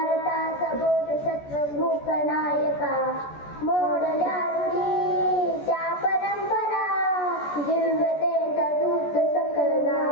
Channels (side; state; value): right; late; 14 ms